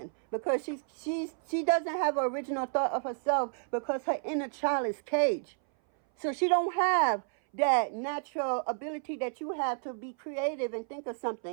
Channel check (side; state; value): left; silent; 57 dB below the other